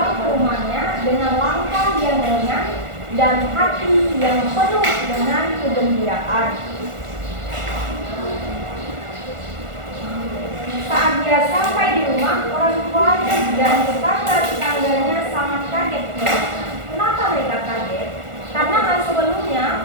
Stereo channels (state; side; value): late; left; 1.4 ms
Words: ke rumahnya dengan langkah yang ringan dan hati yang penuh dengan kegembiraan. Saat dia sampai di rumah, orang tuanya dan tetangga-tetangganya sangat kaget melihatnya. Kenapa mereka kaget? Karena sebelumnya